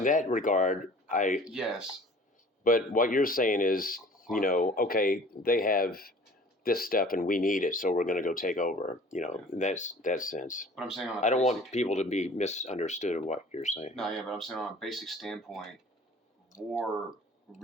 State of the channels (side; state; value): both; normal; correlation 0.48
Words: that regard, yes. But what you're saying is, okay, they have this stuff and we need it, so we're going to go take over. In that sense. But I'm saying I don't want people to be misunderstood of what you're saying. No, yeah, but I'm saying on a basic standpoint, war